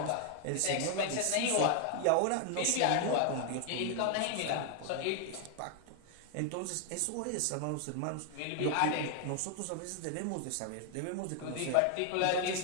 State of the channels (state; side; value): different; both; correlation 0.00